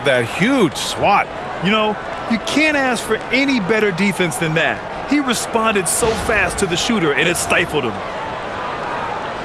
that huge swat. You know, you can't ask for any better defense than that. He responded so fast to the shooter, and it stifled him.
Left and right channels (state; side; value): identical; both; correlation 1.00